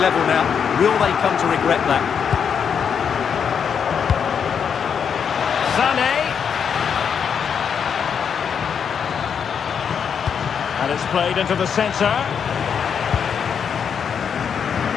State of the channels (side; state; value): right; quieter; 7.2 dB